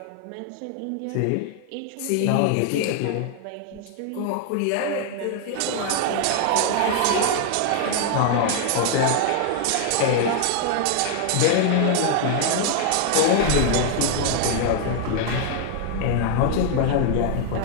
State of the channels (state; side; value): different; both; correlation 0.00